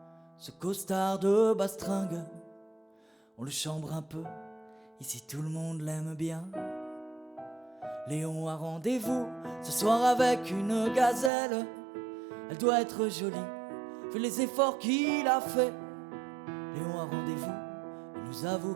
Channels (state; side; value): drops out; left; at 11.3 s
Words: ce costard de bastringue? On le chambre un peu, ici tout le monde l'aime bien. Léon a rendez-vous ce soir avec une gazelle. Elle doit être jolie, vu les efforts qu'il a fait. Léon a rendez-vous, il nous avoue